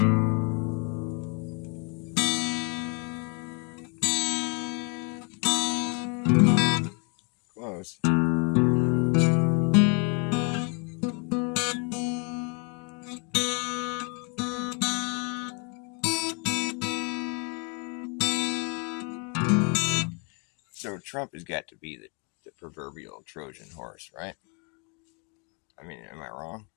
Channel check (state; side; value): quieter; right; 35.6 dB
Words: Close. So Trump has got to be the proverbial Trojan horse, right? I mean, am I wrong?